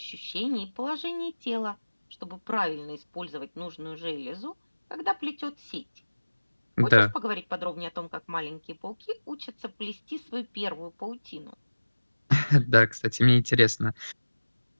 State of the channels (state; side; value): inverted; both; correlation -1.00